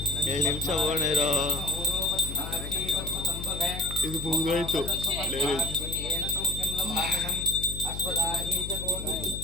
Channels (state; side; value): noise; left; hum, 8 dB below the sound